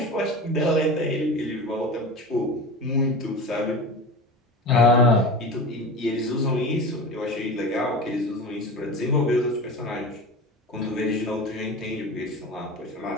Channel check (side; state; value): both; normal; correlation 0.31